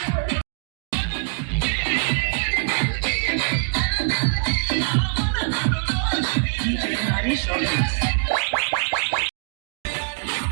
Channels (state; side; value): silent; left; digital silence